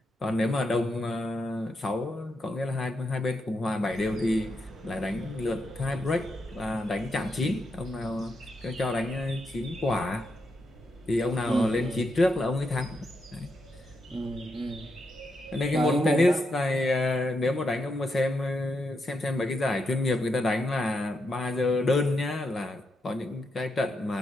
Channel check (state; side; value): normal; both; correlation 0.83